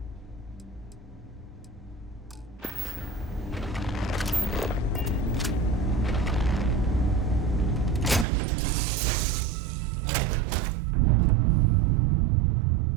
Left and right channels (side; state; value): left; drops out; at 8.2 s